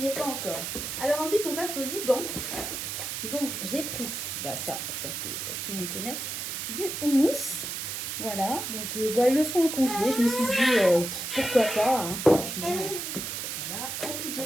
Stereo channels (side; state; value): right; noise; hiss, 4 dB below the sound